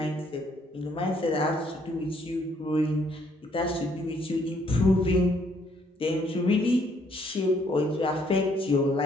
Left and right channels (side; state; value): both; normal; correlation 0.67